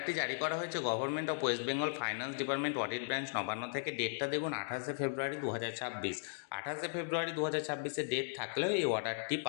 জারি করা হয়েছে government of West Bengal finance department audit branch Nabanna থেকে। ডেটটা দেখুন 28 ফেব্রুয়ারি 2026। 28 ফেব্রুয়ারি 2026 ডেট থাকলেও এই অর্ডারটি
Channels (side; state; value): right; silent; digital silence